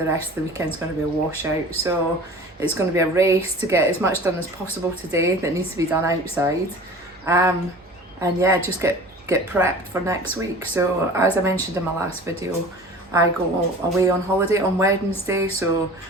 rest of the weekend's going to be a washout, so it's going to be a race to get as much done as possible today that needs to be done outside, and yeah, just get prepped for next week. So as I mentioned in my last video, I go away on holiday on Wednesday, so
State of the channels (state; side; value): normal; both; correlation 0.41